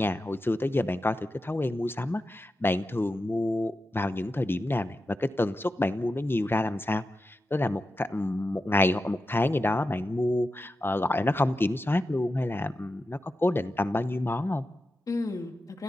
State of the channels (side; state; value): both; normal; correlation 0.90